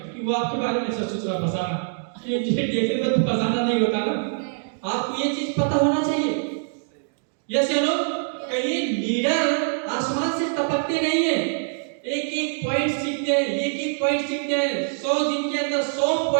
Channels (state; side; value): silent; left; 63 dB below the other